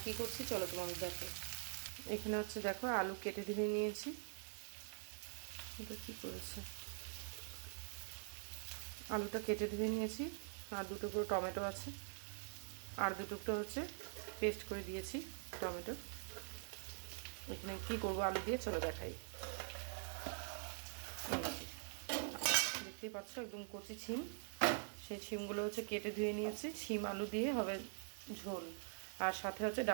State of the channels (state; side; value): silent; left; digital silence